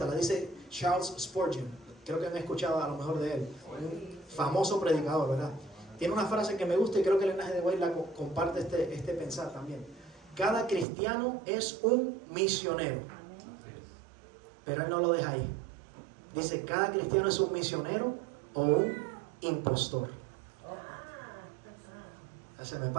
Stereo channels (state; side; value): drops out; left; at 10.9 s